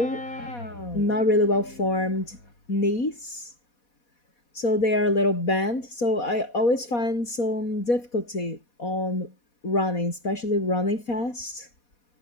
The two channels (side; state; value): right; late; 4.2 ms